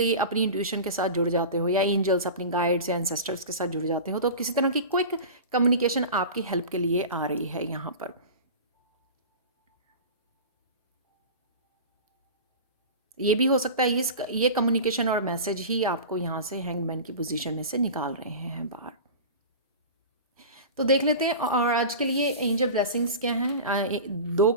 अपनी इंट्यूशन के साथ जुड़ जाते हो, या एंजल्स, अपनी गाइड्स या एंसेस्टर्स के साथ जुड़ जाते हो। तो किसी तरह की क्विक कम्युनिकेशन आपकी हेल्प के लिए आ रही है यहाँ पर। ये भी हो सकता है ये कम्युनिकेशन और मैसेज ही आपको यहाँ से हैंगमैन की पोजीशन में से निकाल रहे हैं बाहर। तो देख लेते हैं और आज के लिए एंजल ब्लेसिंग्स क्या हैं। 2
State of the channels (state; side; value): inverted; both; correlation -0.32